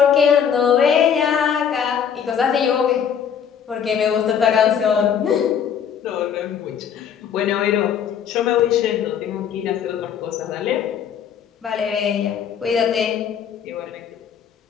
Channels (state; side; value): quieter; right; 8.0 dB